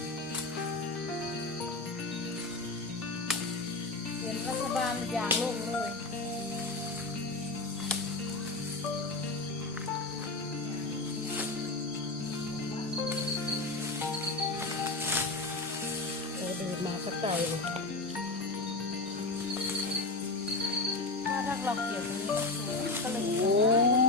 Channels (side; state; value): right; quieter; 3.2 dB